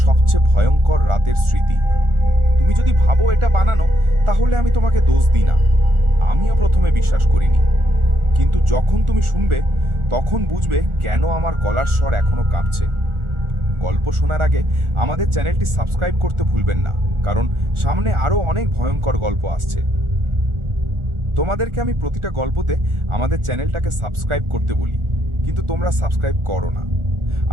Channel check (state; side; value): late; left; 1.4 ms